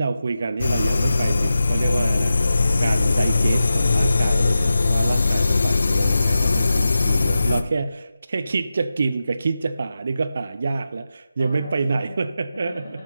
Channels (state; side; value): inverted; both; correlation -0.91